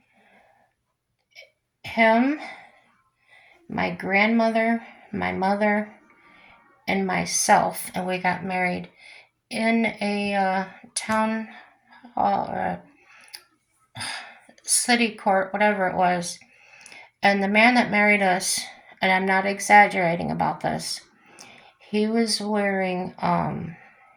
him, my grandmother, my mother, and myself, and we got married in a town hall or city court, whatever it was. And the man that married us, and I'm not exaggerating about this, he was wearing,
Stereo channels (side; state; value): both; identical; correlation 1.00